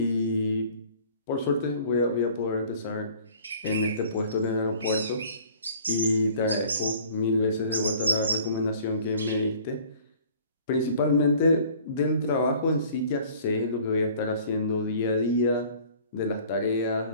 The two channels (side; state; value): both; inverted; correlation -0.51